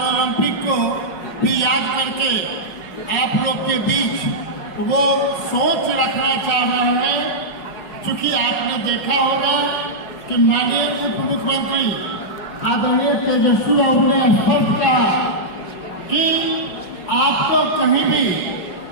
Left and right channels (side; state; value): right; late; 5.0 ms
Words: को भी याद करके आप लोग के बीच वो सोच रखना चाह रहे हैं। चूंकि आपने देखा होगा कि माननीय उप मुख्यमंत्री आदरणीय तेजस्वी बाबू ने स्पष्ट कहा कि आपको कहीं भी